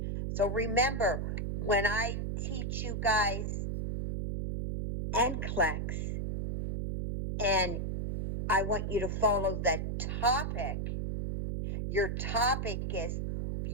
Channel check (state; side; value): noise; right; hum, 1 dB below the sound